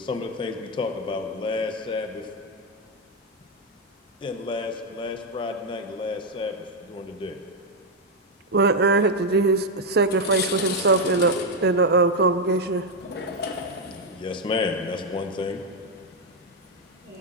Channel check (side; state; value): both; normal; correlation 0.03